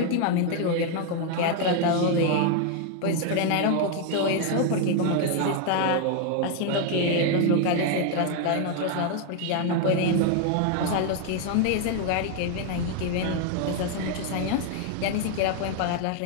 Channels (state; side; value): different; both; correlation 0.01